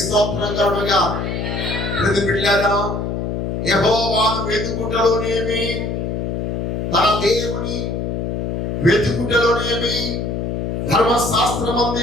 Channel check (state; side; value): noise; left; hum, 2 dB below the sound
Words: స్తోత్రం కలుగుగా. ప్రతి బిడ్డలారా, యెహోవాను వెతుకుటలోనేమి, తన దేవుని వెతుకుటలోనేమి,